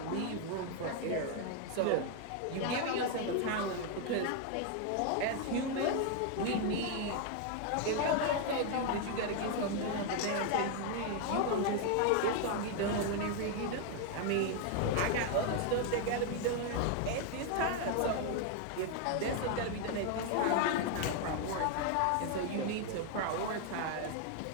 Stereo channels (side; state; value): both; different; correlation 0.01